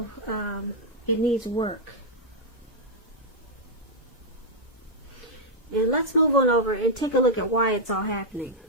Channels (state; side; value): normal; both; correlation -0.05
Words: it needs work. And let's move on over and take a look at why it's all happening.